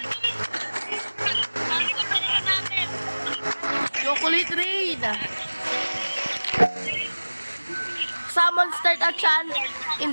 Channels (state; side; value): inverted; both; correlation -1.00